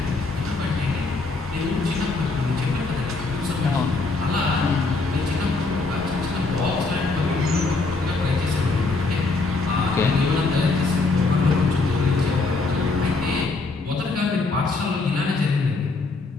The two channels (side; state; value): right; quieter; 3.6 dB